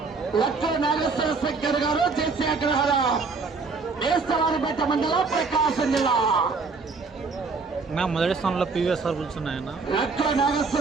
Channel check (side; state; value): left; quieter; 4.4 dB